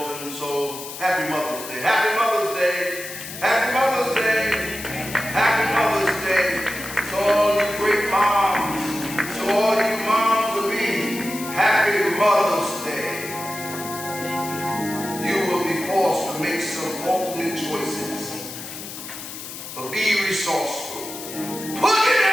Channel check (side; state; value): left; noise; hiss, 10 dB below the sound